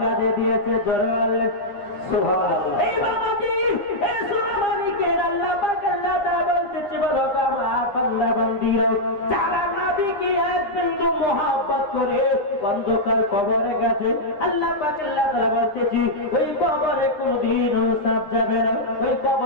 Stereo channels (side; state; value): right; late; 9.9 ms